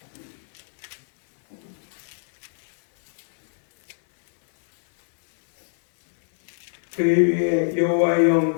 그의 위에 여호와의 영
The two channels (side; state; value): right; silent; 62 dB below the other